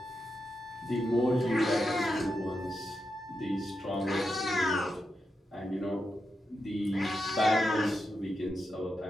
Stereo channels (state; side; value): normal; both; correlation 0.87